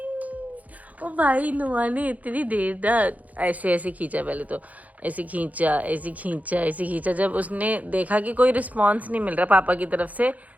ओ भाई नुआ ने इतनी देर तक ऐसे ऐसे खींचा, पहले तो ऐसे खींचा ऐसे खींचा ऐसे खींचा। जब उसने देखा कि कोई रिस्पॉन्स नहीं मिल रहा पापा की तरफ से,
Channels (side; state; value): left; late; 0.075 ms